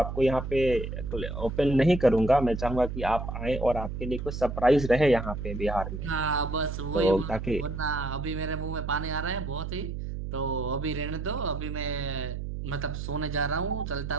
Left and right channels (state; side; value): noise; right; hum, 5 dB below the sound